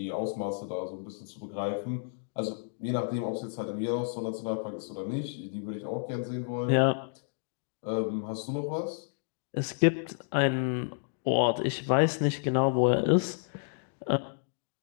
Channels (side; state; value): right; silent; digital silence